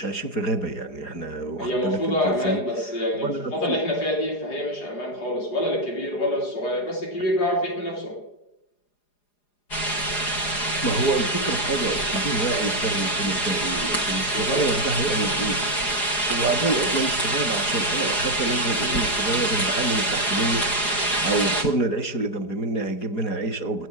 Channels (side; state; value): right; late; 4.9 ms